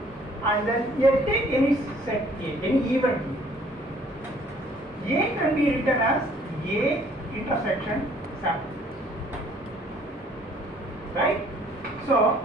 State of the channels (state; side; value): normal; both; correlation 0.59